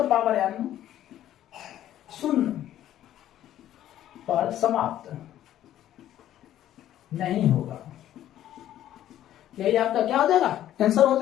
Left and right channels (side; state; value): right; quieter; 12.2 dB